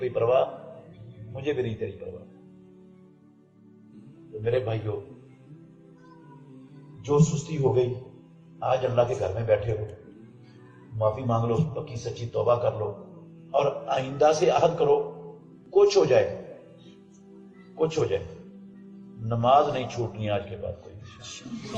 پرواہ، مجھے بھی نہیں تیری پرواہ۔ تو میرے بھائیو، جو سستی ہو گئی، آج اللہ کے گھر میں بیٹھے ہو، معافی مانگ لو، پکی سچی توبہ کر لو، اور آئندہ سے عہد کرو، کچھ ہو جائے نماز نہیں چھوٹنی آج کے بعد کوئی،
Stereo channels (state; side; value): identical; both; correlation 1.00